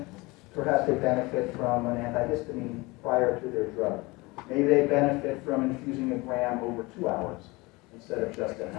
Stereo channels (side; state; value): right; quieter; 23.7 dB